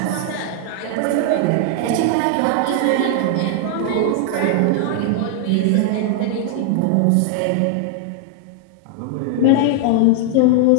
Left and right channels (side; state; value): both; different; correlation 0.00